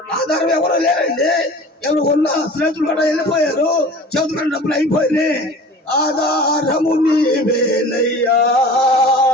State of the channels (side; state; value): both; normal; correlation 0.41